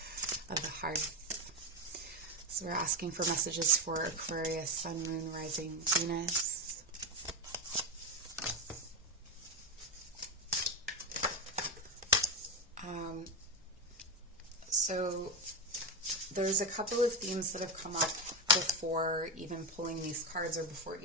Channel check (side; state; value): both; normal; correlation 0.12